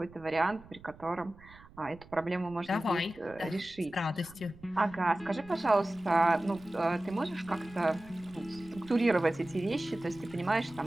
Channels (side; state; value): right; noise; rumble, 22 dB below the sound